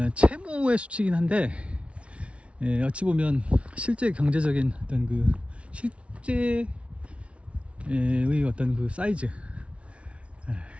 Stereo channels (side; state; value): left; late; 0.061 ms